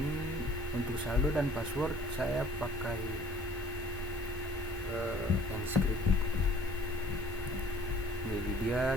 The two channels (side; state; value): both; normal; correlation 0.53